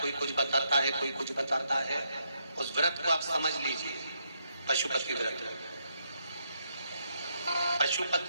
कुछ बताता है, कोई कुछ बताता है। उस व्रत को आप समझ लीजिए, पशुपति व्रत।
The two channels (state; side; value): inverted; both; correlation -0.77